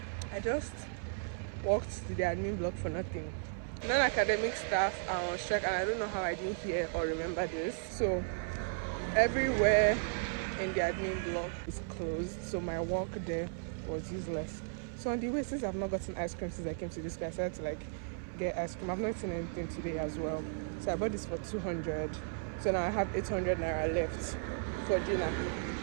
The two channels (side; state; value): left; silent; 54 dB below the other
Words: I just walked to the admin block for nothing. Non-academic staff are on strike, and I don't know how I didn't hear or remember this. So everywhere in the admin block is closed, so my walk there was useless. So on the way, since I've not gotten ice cream since I came to this class, I decided to like get ice cream. I've not eaten anything today as well, so I bought this for 200. So now I have 800 naira left for dinner.